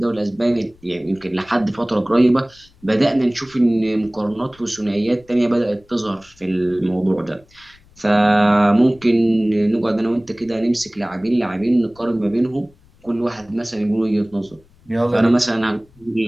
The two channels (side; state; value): left; noise; rumble, 29 dB below the sound